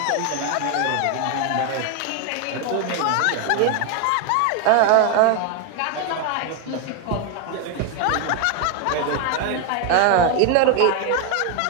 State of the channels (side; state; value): both; different; correlation 0.01